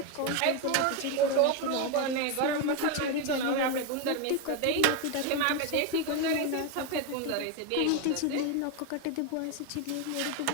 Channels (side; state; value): both; different; correlation 0.02